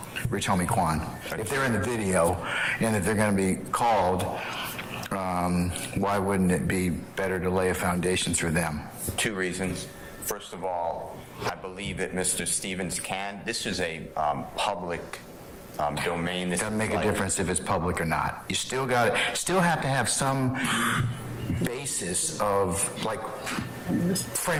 Rich Homie Kwan? If they're in the video and that they're going to be called, why wouldn't it be better to lay a foundation through them? 2 reasons. First of all, I believe that Mr. Stevens can. This is a public domain. It doesn't make a difference if it's public or not. You still have to have some basis of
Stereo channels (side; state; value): both; identical; correlation 1.00